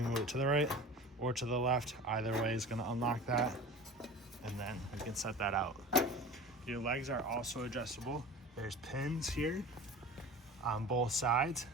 move it to the right or to the left. Either way is gonna unlock that, and then you can set that out. Your legs are also adjustable. There's pins here on both sides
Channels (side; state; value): both; normal; correlation 0.37